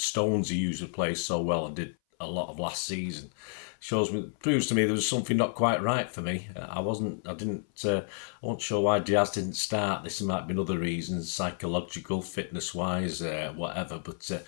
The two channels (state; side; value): silent; right; 58 dB below the other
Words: usually plays so well and did a lot of last season proves to me there was something not quite right for me. I wasn't sure why Diaz didn't start. This might be another reason, psychological, fitness-wise, whatever. But